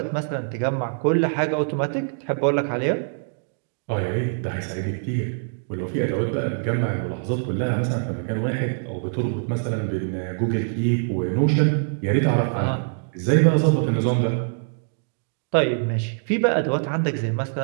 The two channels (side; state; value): left; silent; digital silence